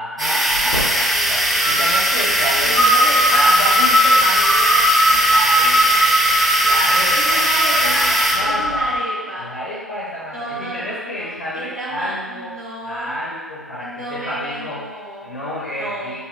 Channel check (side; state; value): both; normal; correlation 0.65